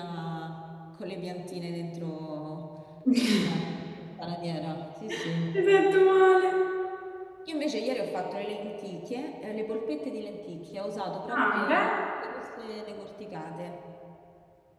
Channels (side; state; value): both; identical; correlation 1.00